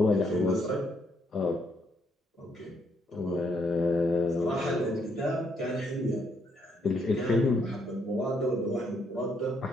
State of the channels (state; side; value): normal; both; correlation 0.73